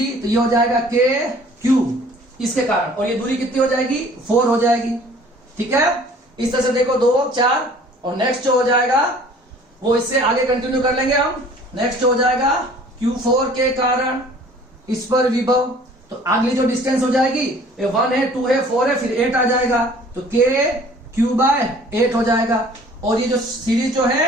तो ये हो जाएगा K Q इसके कारण, और ये दूरी कितनी हो जाएगी 4 हो जाएगी, ठीक है। इस तरह से देखो 2 4, और नेक्स्ट जो हो जाएगा वो इससे आगे कंटिन्यू कर लेंगे हम। नेक्स्ट हो जाएगा Q4 के कारण इस पर विभव, तो अगली जो डिस्टेंस हो जाएगी 1 है 2 है 4 है, फिर 8 आ जाएगा, तो K Q बाय 8 हो जाएगा। और ये जो सीरीज जो है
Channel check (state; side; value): normal; both; correlation 0.51